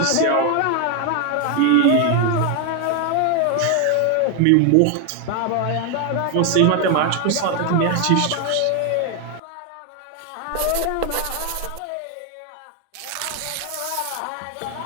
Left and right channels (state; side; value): different; both; correlation 0.01